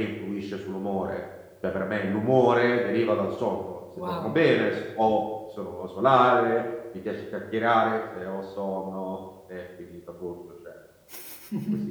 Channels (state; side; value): identical; both; correlation 1.00